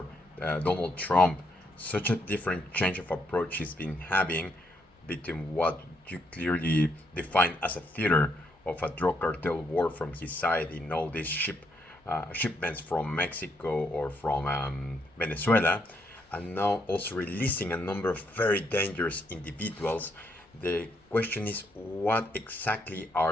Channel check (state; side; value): normal; both; correlation 0.75